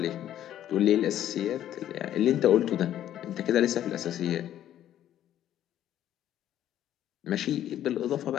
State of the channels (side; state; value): right; quieter; 11.6 dB